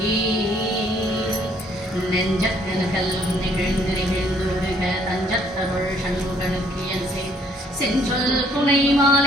நெஞ்சக்கனகல்லும் நிகழ்ந்து நிகழ்ந்துருக தஞ்சத்தருள் சண்முகனுக்கியன்சே செஞ்சொல் புனை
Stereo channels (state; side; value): normal; both; correlation 0.64